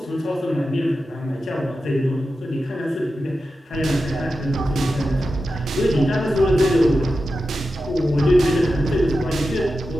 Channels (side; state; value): both; normal; correlation 0.91